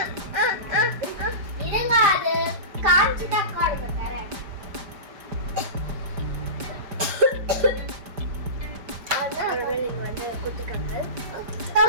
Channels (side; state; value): left; late; 5.0 ms